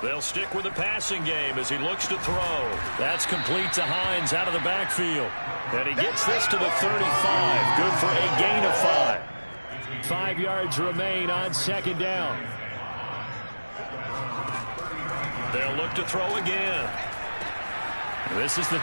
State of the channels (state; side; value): inverted; both; correlation -1.00